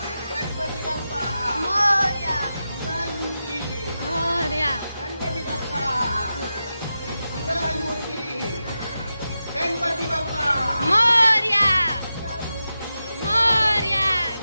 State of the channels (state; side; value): inverted; both; correlation -0.91